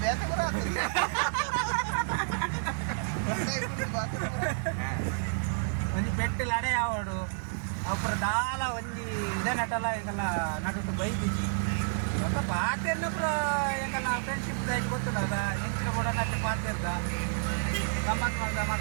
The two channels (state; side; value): silent; left; digital silence